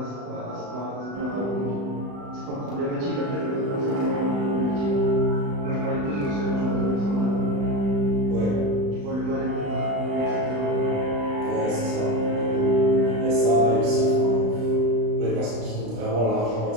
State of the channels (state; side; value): late; left; 35 ms